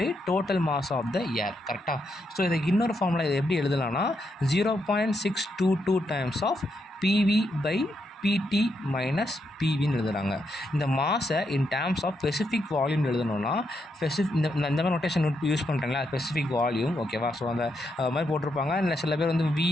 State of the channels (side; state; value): both; normal; correlation 0.80